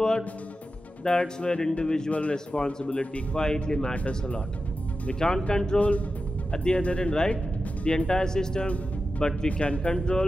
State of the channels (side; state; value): both; normal; correlation 0.92